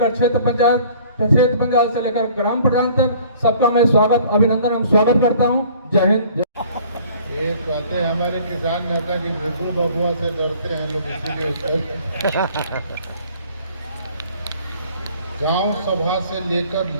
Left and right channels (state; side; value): inverted; both; correlation -0.53